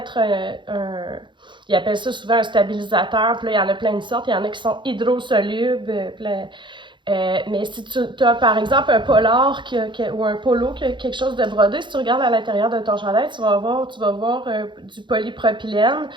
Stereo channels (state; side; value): late; left; 0.23 ms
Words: ils appellent ça souvent un stabilisateur, puis là, il y en a plein de sortes, il y en a qui sont hydrosolubles, mais si tu as par exemple un polar ou un polo qui a quelque chose de brodé, si tu regardes à l'intérieur de ton chandail, tu vas voir du polypropylène.